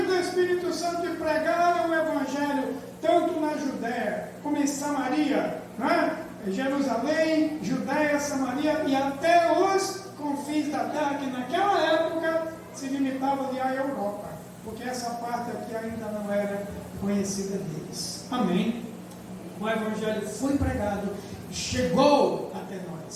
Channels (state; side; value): identical; both; correlation 1.00